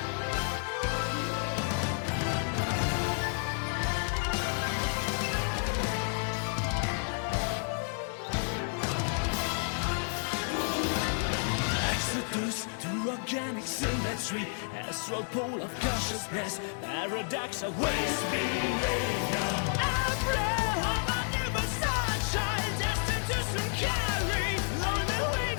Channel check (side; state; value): right; silent; 57 dB below the other